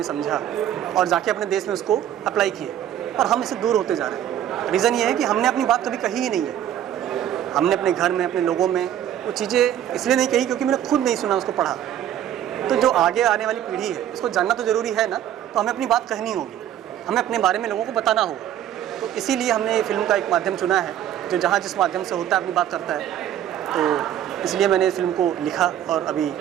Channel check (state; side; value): quieter; left; 10.9 dB